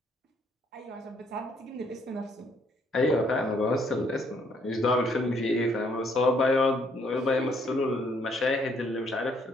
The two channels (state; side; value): normal; both; correlation 0.68